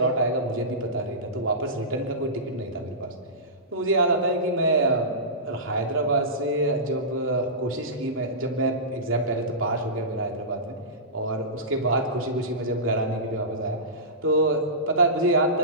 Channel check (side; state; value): both; normal; correlation -0.20